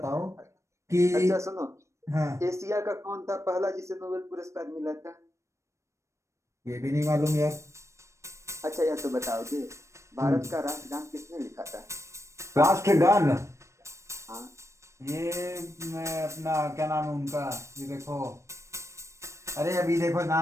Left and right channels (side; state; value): left; late; 0.14 ms